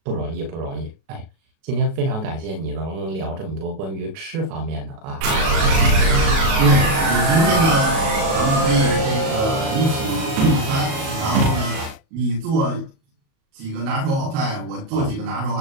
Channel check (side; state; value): left; late; 37 ms